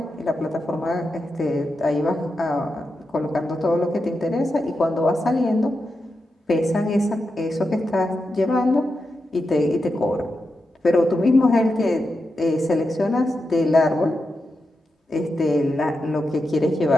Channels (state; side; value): normal; both; correlation 0.88